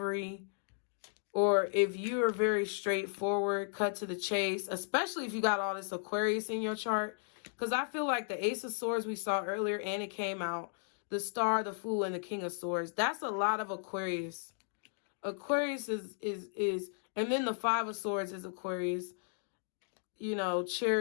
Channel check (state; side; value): silent; right; digital silence